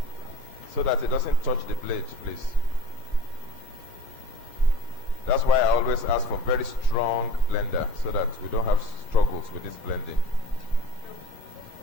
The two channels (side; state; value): right; late; 1.2 ms